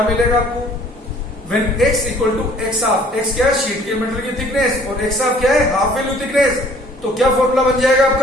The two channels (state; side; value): normal; both; correlation 0.56